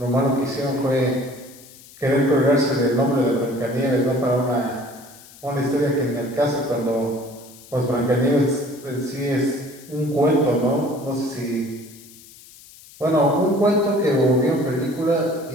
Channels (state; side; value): noise; left; hiss, 21 dB below the sound